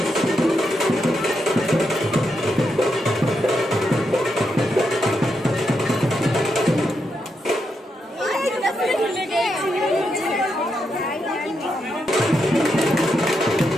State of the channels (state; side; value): normal; both; correlation 0.83